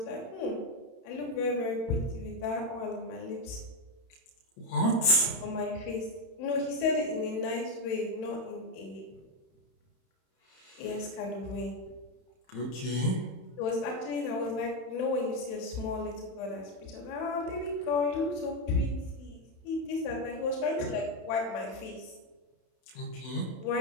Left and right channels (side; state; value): right; late; 31 ms